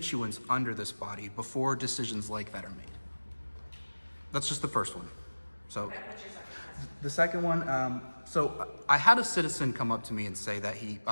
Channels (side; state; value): both; inverted; correlation -1.00